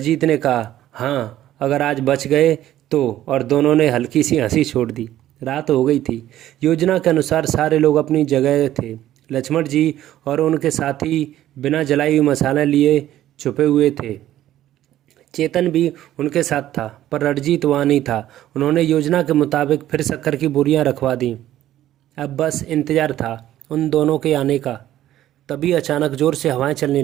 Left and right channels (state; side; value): quieter; left; 13.1 dB